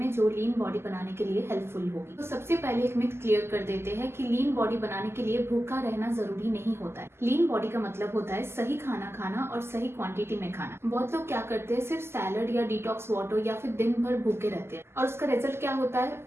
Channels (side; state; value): left; late; 0.12 ms